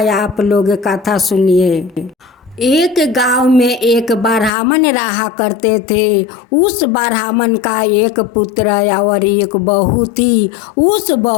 आप लोग कथा सुनिए। एक गांव में एक ब्राह्मण रहा करते थे। उस ब्राह्मण का एक पुत्र और एक बहू थी। उस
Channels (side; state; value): right; drops out; at 4.5 s